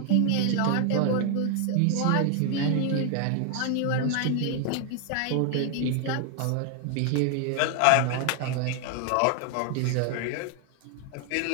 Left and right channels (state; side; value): different; both; correlation 0.00